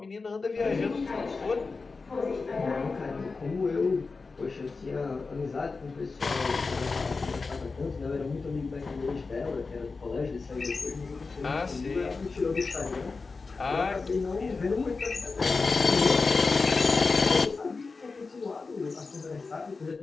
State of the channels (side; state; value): right; quieter; 4.2 dB